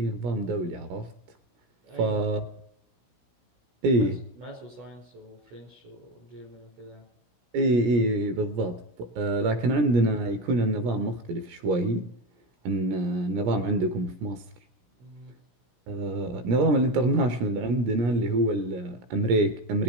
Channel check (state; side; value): late; left; 17 ms